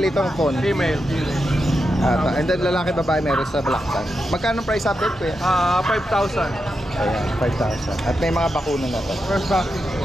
itong phone. female. And then lalaki, babae, meron sa black cat. Magkano price update, Kuya? 5,000. Ayan, 5,000. At may mga bakuna na to. First vaccine.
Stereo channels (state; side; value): normal; both; correlation 0.87